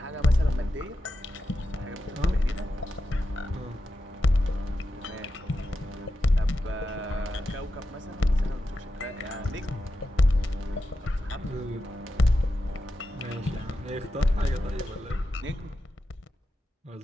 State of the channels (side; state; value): both; normal; correlation 0.89